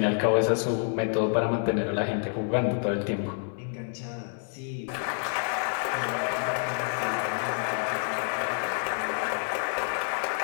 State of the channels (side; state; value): right; silent; 59 dB below the other